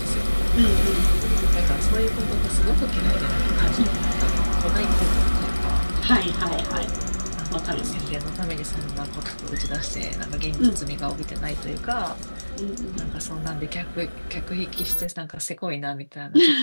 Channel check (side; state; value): both; inverted; correlation -1.00